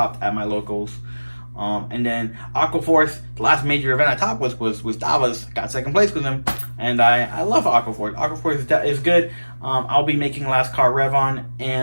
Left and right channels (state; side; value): inverted; both; correlation -1.00